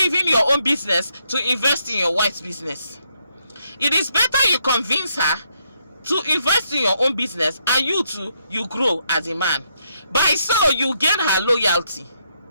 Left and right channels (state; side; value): inverted; both; correlation -0.77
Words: your own business to invest in your wife's business, it is better you convince her to invest in your own business, and you grow as a man. By so you gain her loyalty.